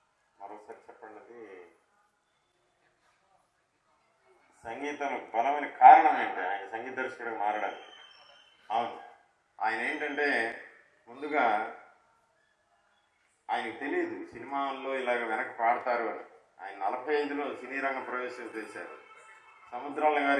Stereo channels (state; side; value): identical; both; correlation 1.00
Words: మరోసారి చెప్పండి. అది సంగీతం బలమైన కారణం ఏంటి ఆయన సంగీత దర్శకుడిగా మారడానికి? అవును, ఆయన ఏంటంటే ముందుగా ఆయనకు తెలియదు సినిమాల్లో ఇలాగ వెనక పాడతారు అని. ఆయన 45లో సినీ రంగ ప్రవేశం చేశారు. సముద్రాల